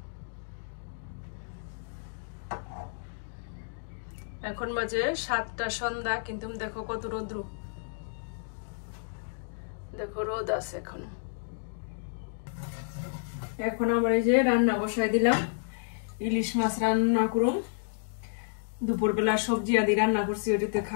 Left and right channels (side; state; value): right; silent; digital silence